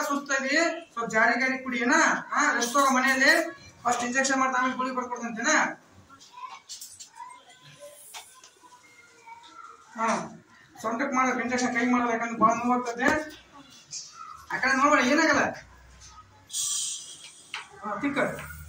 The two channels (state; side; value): identical; both; correlation 1.00